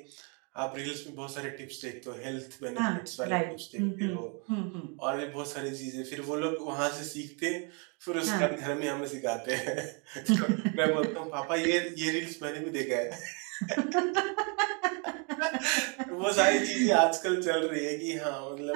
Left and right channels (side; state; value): left; quieter; 35.7 dB